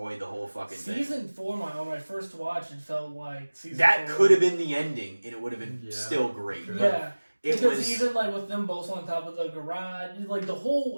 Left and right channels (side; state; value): both; inverted; correlation -1.00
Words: the whole fucking thing. Season 4, when I first watched, it felt like season 4. That could have been the ending, and it would have been still great. Yeah. Because even like with them both on top of the garage, like the